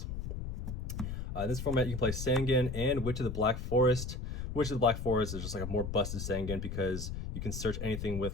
In this format, you can play Sangan and Witch of the Black Forest. Witch of the Black Forest is just like a more busted Sangan because you can search anything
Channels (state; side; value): noise; left; rumble, 5 dB below the sound